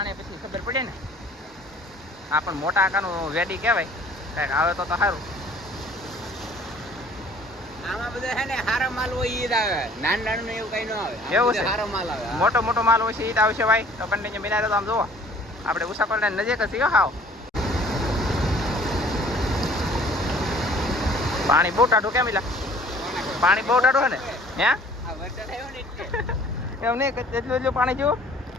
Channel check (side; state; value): both; normal; correlation 0.53